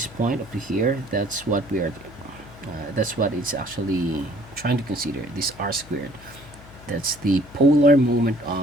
point up to here. That's what we are. That's what it's actually trying to consider. This r squared. That's the polar moment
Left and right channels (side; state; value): left; noise; hum, 20 dB below the sound